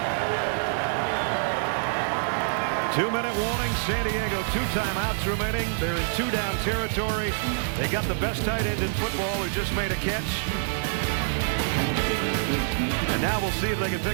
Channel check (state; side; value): silent; left; digital silence